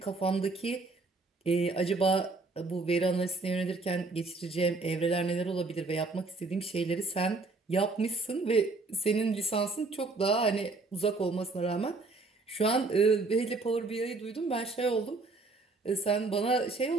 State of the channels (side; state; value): left; quieter; 3.6 dB